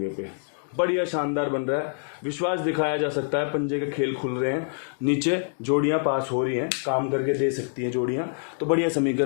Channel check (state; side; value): silent; right; 61 dB below the other